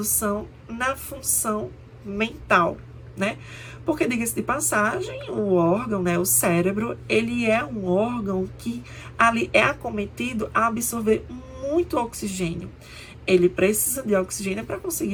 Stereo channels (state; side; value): identical; both; correlation 1.00